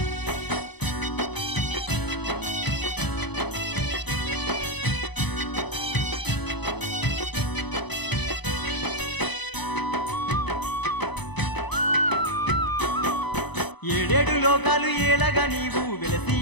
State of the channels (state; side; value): late; right; 1.0 ms